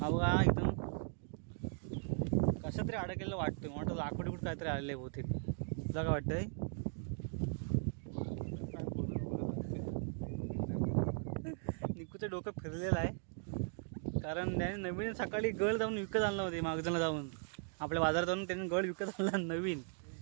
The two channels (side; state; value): left; silent; 52 dB below the other